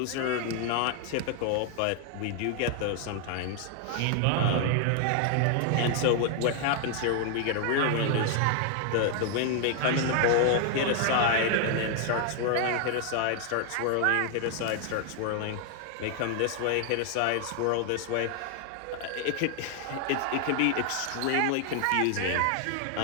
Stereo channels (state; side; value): different; both; correlation 0.00